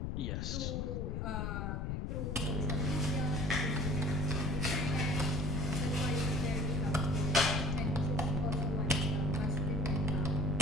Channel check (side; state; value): left; noise; rumble, 1 dB below the sound